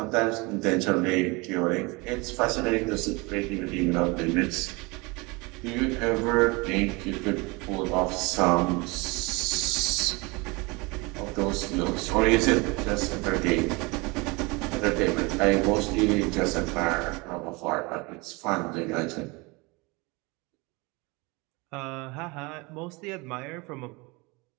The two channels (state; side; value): quieter; left; 26.2 dB